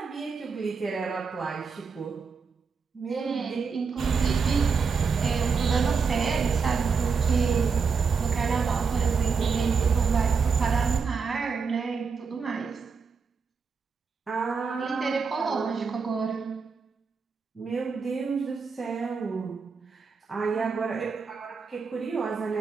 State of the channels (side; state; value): left; quieter; 5.4 dB